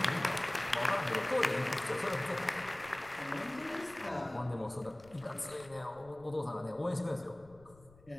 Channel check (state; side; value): noise; left; rumble, 25 dB below the sound